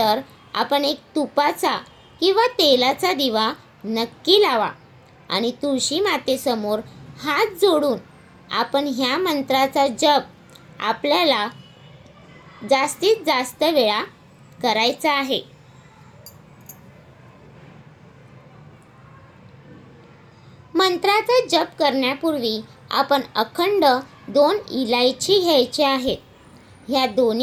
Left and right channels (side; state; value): both; identical; correlation 1.00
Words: आपण एक तुपाचा किंवा तेलाचा दिवा नक्की लावा आणि तुळशी मातेसमोर हात जोडून आपण ह्या मंत्राचा जप आपल्याला जास्तीत जास्त वेळा करायचा आहे. मंत्राचा जप करण्यापूर्वी आपण अखंड 2 इलायची घ्यायची आहेत. ह्या